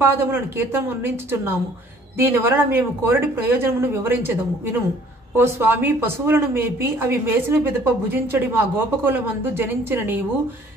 కీర్తనం అందించుచున్నాము. దీని వలన మేము కోరడి ప్రయోజనమును వివరించదము వినుము. ఓ స్వామి, పశువులను మేపి అవి మేసిన పిదప భుజించడి మా గోపకులమందు జనించిన నీవు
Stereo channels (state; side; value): normal; both; correlation 0.56